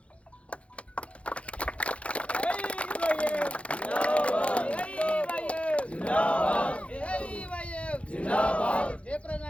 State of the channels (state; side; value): late; right; 0.062 ms